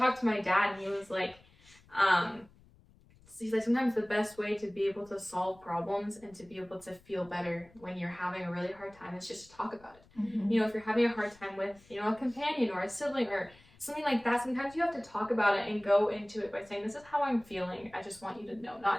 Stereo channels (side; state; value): left; noise; rumble, 27 dB below the sound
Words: to my dad and he was like, he's like, sometimes the best way to be able to solve problems and to be able to feel better when you're having a really hard time is just to talk about it. If you're having a hard time with, a companion or a sibling or something like that, sometimes you have to talk about it and go into it by saying, this is how I'm feeling. I just want you to know.